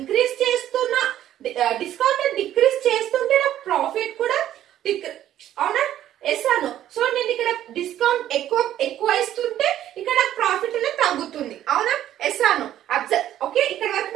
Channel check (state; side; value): quieter; left; 12.0 dB